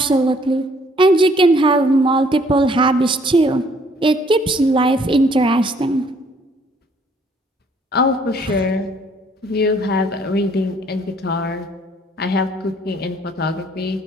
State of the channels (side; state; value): both; normal; correlation 0.62